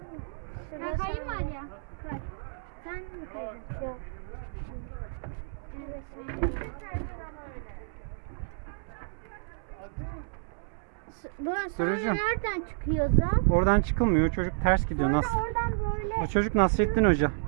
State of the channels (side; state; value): left; silent; 57 dB below the other